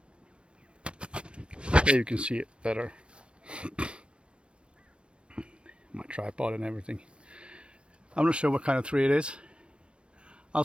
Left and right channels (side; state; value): left; late; 0.058 ms